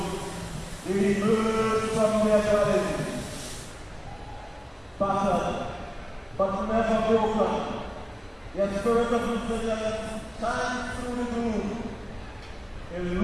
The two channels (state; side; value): identical; both; correlation 1.00